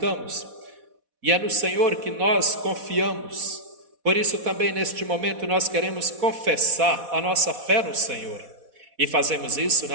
e é no Senhor que nós confiamos. Por isso também neste momento nós queremos confessar a nossa fé no Senhor. E fazemos isso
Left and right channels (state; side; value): late; left; 4.1 ms